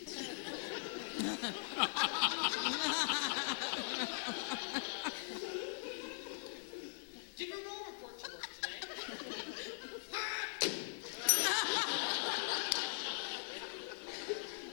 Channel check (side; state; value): right; silent; digital silence